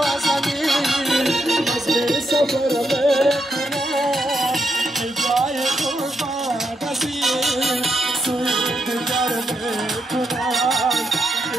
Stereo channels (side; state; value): both; normal; correlation 0.81